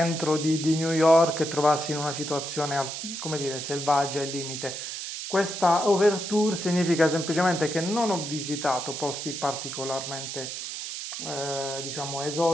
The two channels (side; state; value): right; noise; hiss, 6 dB below the sound